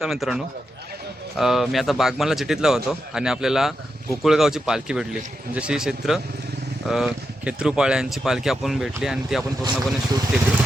मित्रांनो मी आता बागमानला चिठीतला होतो आणि आपल्याला गोकुळगावची पालखी भेटली. म्हणजे श्री क्षेत्र खेत्रूपाळ्यांची पालखी आपण भेटली आणि ती आपण पूर्णपणे शूट केली.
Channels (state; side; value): normal; both; correlation 0.86